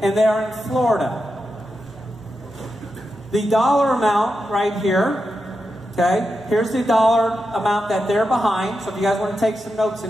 and they are in Florida. The dollar amount right here, okay, here's the dollar amount that they're behind. So if you guys want to take some notes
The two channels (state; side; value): normal; both; correlation 0.88